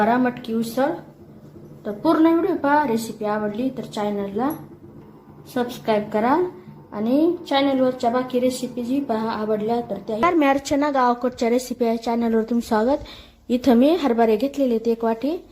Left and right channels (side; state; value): both; identical; correlation 1.00